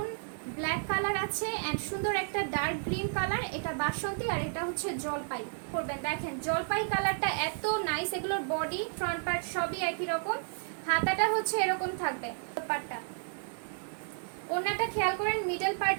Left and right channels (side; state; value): left; silent; digital silence